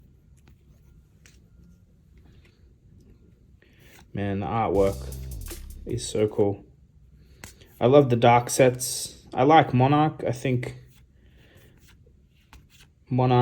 Man, the artwork is so cool. I love the dark sets. I like Monarch. I think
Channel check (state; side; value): identical; both; correlation 1.00